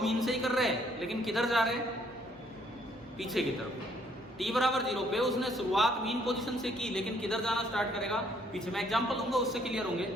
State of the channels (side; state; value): both; normal; correlation 0.66